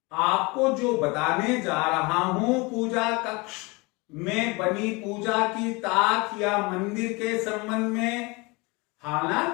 आपको जो बताने जा रहा हूं, पूजा कक्ष में बनी पूजा की ताक या मंदिर के संबंध में,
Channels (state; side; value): quieter; right; 26.3 dB